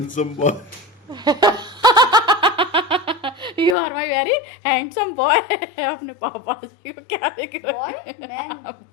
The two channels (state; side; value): drops out; right; at 3.8 s